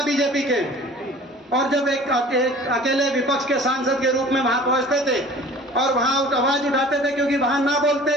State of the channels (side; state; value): both; normal; correlation 0.45